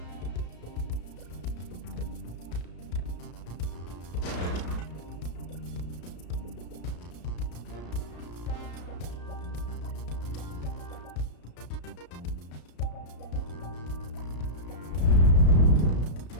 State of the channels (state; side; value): late; right; 33 ms